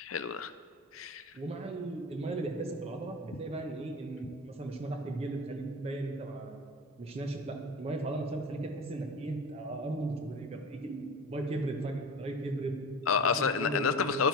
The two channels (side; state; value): both; normal; correlation 0.32